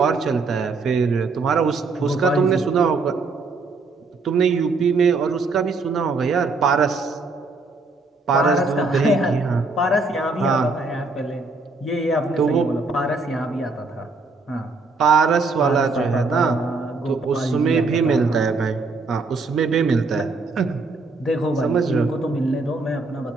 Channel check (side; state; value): left; quieter; 3.7 dB